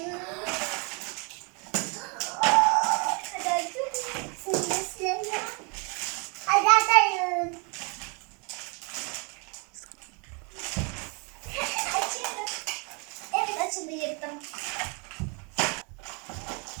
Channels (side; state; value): left; quieter; 33.4 dB